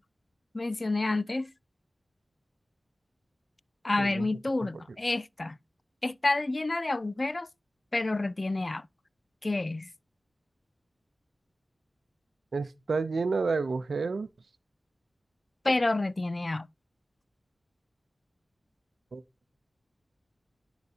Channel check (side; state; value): both; normal; correlation 0.96